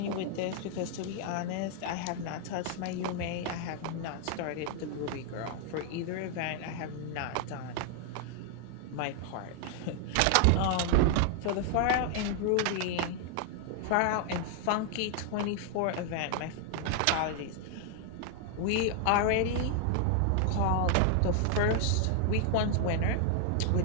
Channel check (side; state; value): both; different; correlation 0.00